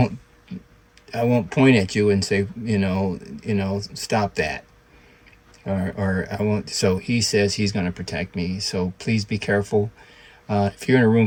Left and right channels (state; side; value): identical; both; correlation 1.00